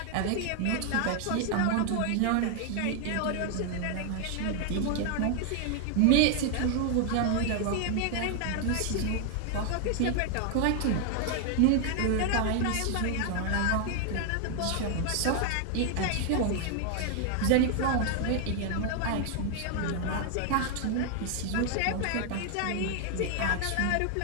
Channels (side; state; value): both; different; correlation 0.00